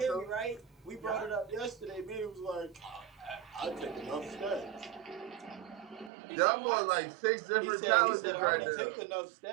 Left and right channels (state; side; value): drops out; left; at 6.1 s